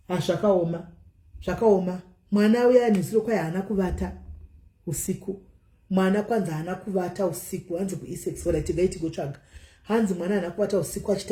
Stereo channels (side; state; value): both; identical; correlation 1.00